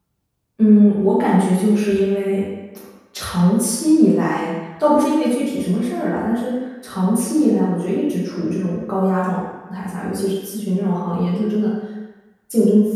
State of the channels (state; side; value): identical; both; correlation 1.00